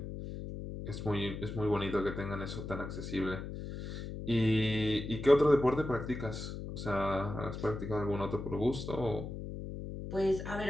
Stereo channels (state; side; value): noise; left; hum, 7 dB below the sound